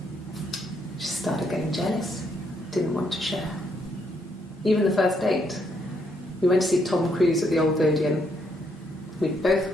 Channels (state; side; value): normal; both; correlation 0.74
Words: She started getting jealous, didn't want to share. Even the first date, we went to see Tom Cruise at the Old Odeon. We both